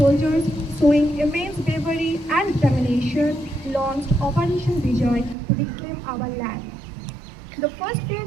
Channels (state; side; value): drops out; left; at 5.4 s